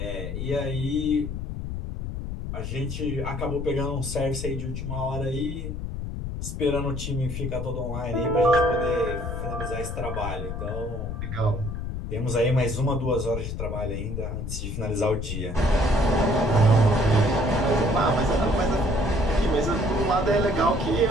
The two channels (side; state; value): left; noise; rumble, 5 dB below the sound